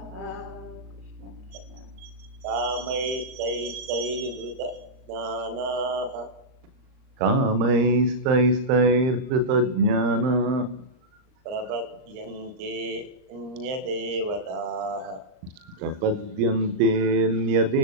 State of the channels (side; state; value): left; late; 38 ms